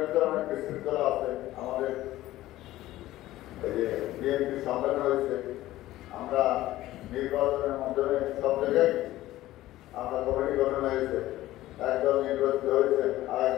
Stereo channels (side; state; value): right; quieter; 15.7 dB